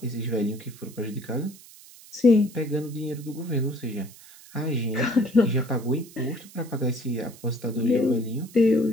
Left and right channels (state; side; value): noise; right; hiss, 21 dB below the sound